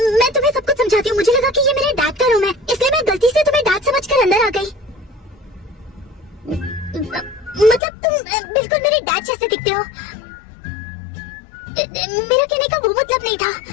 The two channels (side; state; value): right; drops out; at 7.8 s